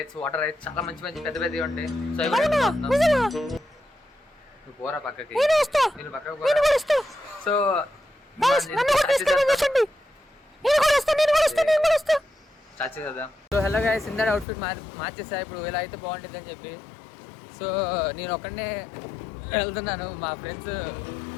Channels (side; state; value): right; drops out; at 14.5 s